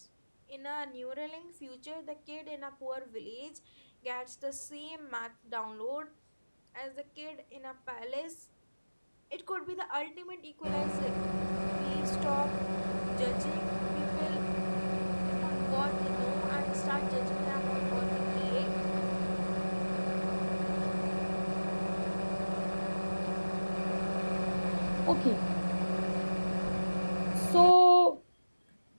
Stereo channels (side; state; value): both; inverted; correlation -1.00